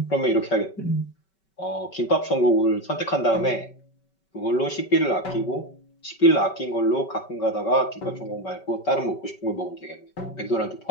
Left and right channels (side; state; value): right; late; 5.3 ms